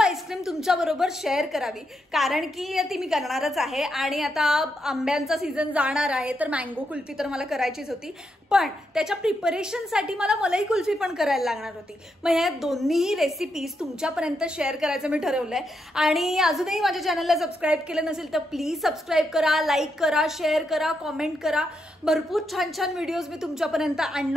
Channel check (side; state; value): both; normal; correlation 0.82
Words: तुमच्याबरोबर शेअर करावी, कारण की ती मी करणारच आहे। आणि आता आंब्यांचा सीझन जाणार आहे तर मँगो कुल्फी तर मला करायचीच होती, पण त्याच्या प्रिपरेशनसाठी मला मलाई कुल्फी पण करायला लागणार होती। मग ह्या दोन्ही रेसिपीज तुमच्यापर्यंत शेअर करायचं मी ठरवलंय। आणि अजूनही माझ्या चॅनलला सबस्क्राईब केलं नसेल तर प्लीज सबस्क्राईब करा, लाईक करा, शेअर करा, कॉमेंट करा। भरपूर छान छान व्हिडिओज मी तुमच्यापर्यंत